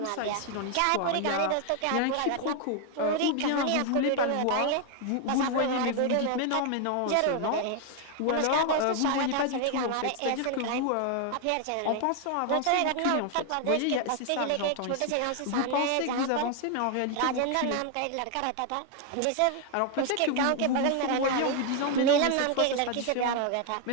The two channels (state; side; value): different; both; correlation 0.00